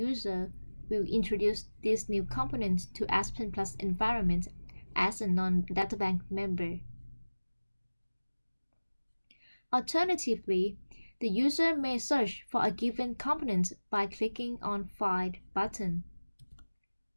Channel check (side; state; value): both; inverted; correlation -1.00